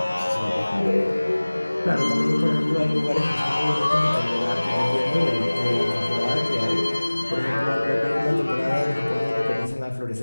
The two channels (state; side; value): inverted; both; correlation -1.00